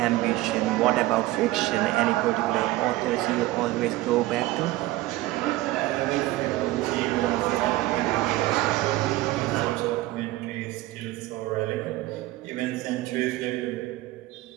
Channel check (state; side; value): quieter; left; 17.4 dB